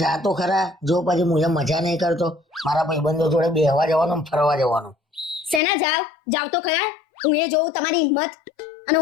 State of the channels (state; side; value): drops out; right; at 5.6 s